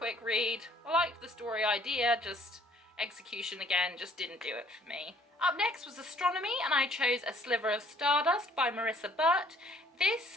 read. I liked the story idea, just execution again just didn't do it for me. Up next was Astronomy, and I chose A Sliver of Stardust by Marissa Burt.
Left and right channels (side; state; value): both; normal; correlation 0.60